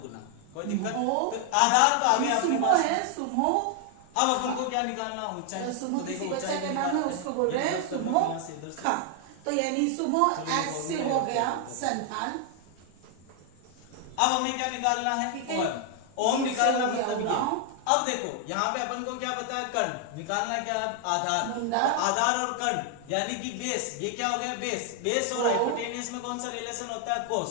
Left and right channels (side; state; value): both; different; correlation 0.00